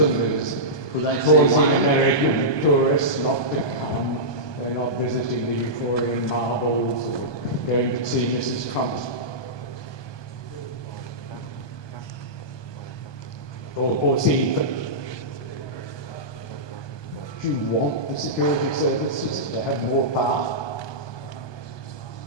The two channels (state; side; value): late; right; 1.2 ms